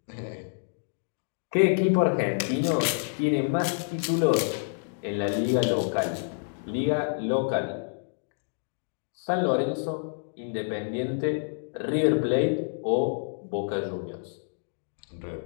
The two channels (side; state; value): right; silent; digital silence